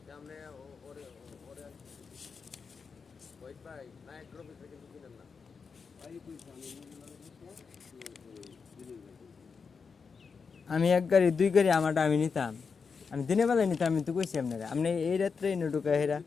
আমি এক গাড়ি দুই গাড়ি আমারটা আমি নিতাম, আমি দিনের বেলায় নিতাম। আমি তো কইছি আপনারা, আপনি এই রাত্রে এনে ঢুকা হেরা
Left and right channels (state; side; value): quieter; right; 5.4 dB